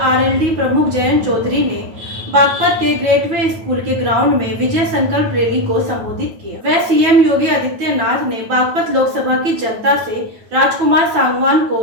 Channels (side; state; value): left; late; 9.2 ms